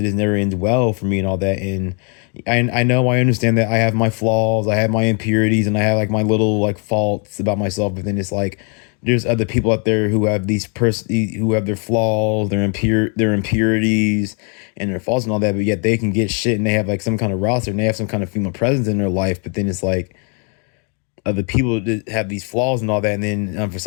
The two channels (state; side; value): quieter; right; 38.4 dB